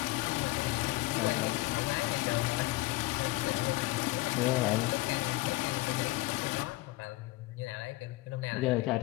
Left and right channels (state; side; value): quieter; right; 19.7 dB